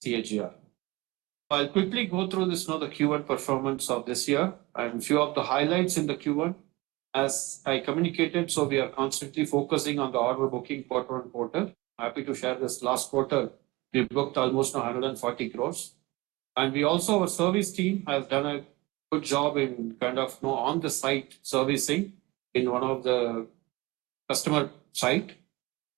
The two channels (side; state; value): left; quieter; 21.9 dB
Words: CAGR. I'll quickly go through this the Q1 performance of this year and few of the highlights in the Q1. As I communicated, so we are constantly focusing on the order booking quarter on quarter. Happy to share this last quarter, we booked almost 140 crores. And we also, our service team has done a good job in on the site servicing in one of the customer site.